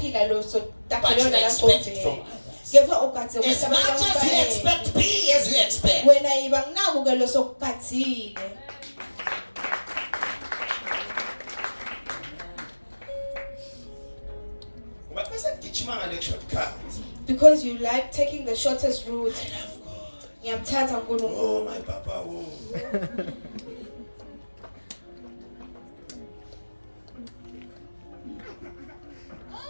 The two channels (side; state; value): both; inverted; correlation -1.00